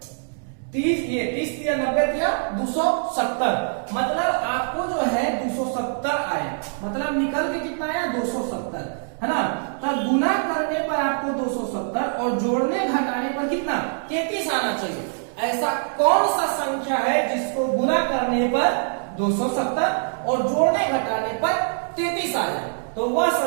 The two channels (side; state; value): left; silent; digital silence